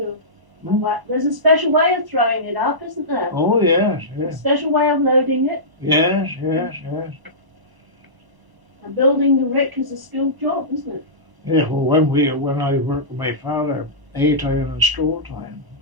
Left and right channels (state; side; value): late; left; 1.0 ms